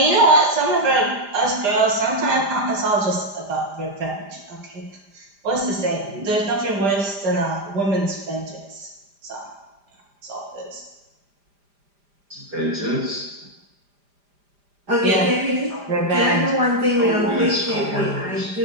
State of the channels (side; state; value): left; late; 5.0 ms